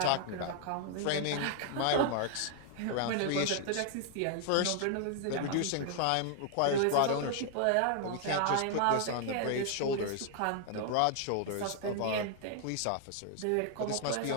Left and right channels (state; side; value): different; both; correlation 0.00